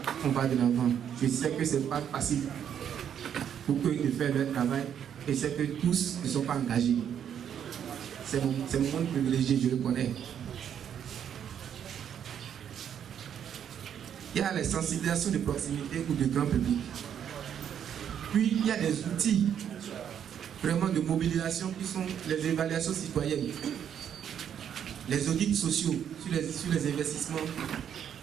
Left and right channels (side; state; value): left; quieter; 8.9 dB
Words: on va de l'avant. Je sais que ce n'est pas facile pour eux de faire leur travail, et c'est que tous ne sont pas engagés. C'est mon monde privilégié, je le connais. Il y a les sensibilisations de proximité ou de grand public. Puis il y a des outils vraiment de mobilisation qui sont les évaluations citoyennes, les audits sociaux sur les investissements,